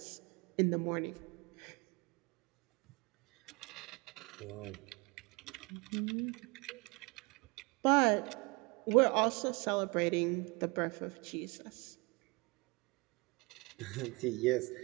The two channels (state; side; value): quieter; left; 27.5 dB